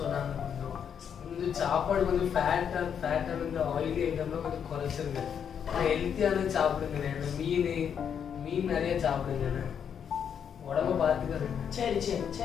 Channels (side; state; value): right; quieter; 7.9 dB